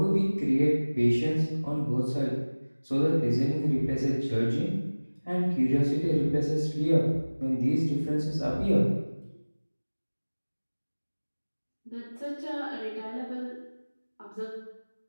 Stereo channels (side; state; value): both; inverted; correlation -1.00